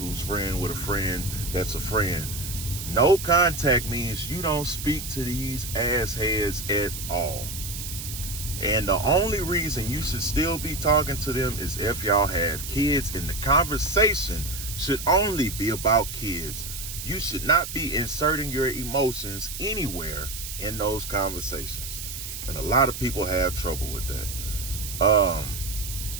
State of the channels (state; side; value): noise; right; hiss, 8 dB below the sound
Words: friend with a friend that's a friend. No contact means you don't speak to these assheads at all. And the only reason you should still be talking to them is if y'all have kids, and the conversation should only be about kids. You should not be inserting your emotions anywhere in those conversations. And a lot of people have trouble with that.